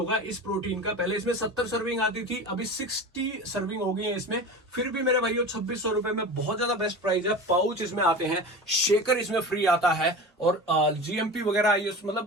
इस प्रोटीन का। पहले इसमें 70 सर्विंग आती थी, अभी 60 सर्विंग हो गई है इसमें, फिर भी मेरे भाइयों 2600 रुपए में बहुत ज्यादा बेस्ट प्राइस है। पाउच इसमें आते हैं, शेकर इसमें फ्री आता है, और GMP वगैरह मतलब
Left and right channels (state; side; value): normal; both; correlation 0.31